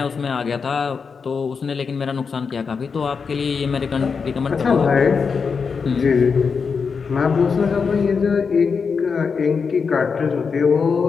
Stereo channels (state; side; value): quieter; right; 5.5 dB